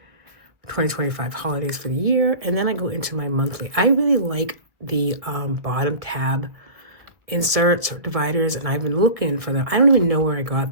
2025 holidays for the year. And then I go into my monthly. I really like the bottom tab inserts or dividers, and I've been looking for them. I don't even know where I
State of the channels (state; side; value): late; left; 1.7 ms